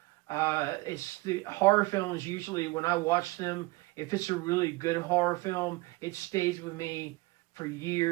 It's the horror films usually when I watch them, if it's a really good horror film, it stays with me for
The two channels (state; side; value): quieter; left; 22.6 dB